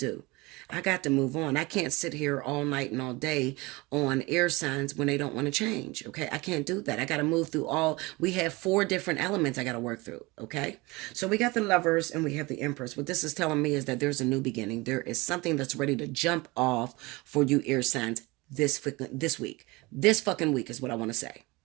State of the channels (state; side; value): quieter; left; 23.6 dB